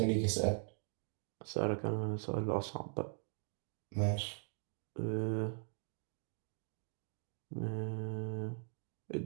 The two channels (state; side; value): silent; left; 51 dB below the other